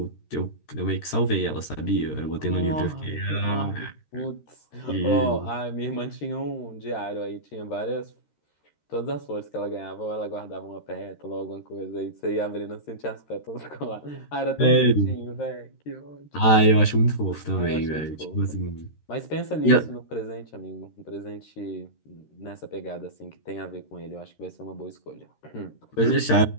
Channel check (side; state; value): right; late; 13 ms